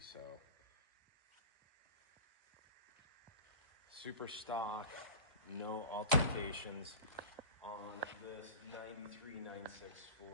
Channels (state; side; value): inverted; both; correlation -0.32